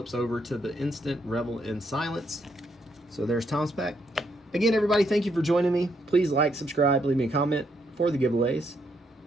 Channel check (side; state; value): both; normal; correlation 0.75